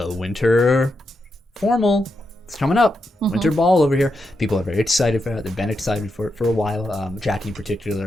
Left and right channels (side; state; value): both; normal; correlation 0.85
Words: winter formal. It's coming up. Winter ball over here. People are very excited for it. They've been excited for it for a while. Jackie in